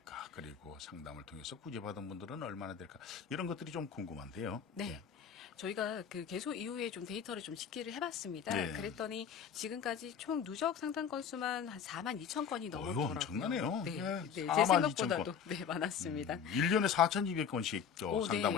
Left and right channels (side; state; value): right; quieter; 7.4 dB